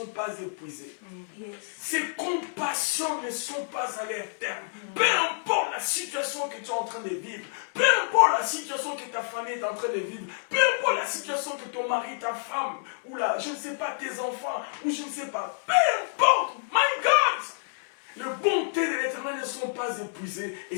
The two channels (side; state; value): right; silent; digital silence